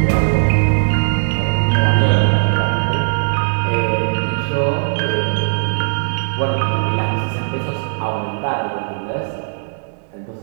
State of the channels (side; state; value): left; silent; digital silence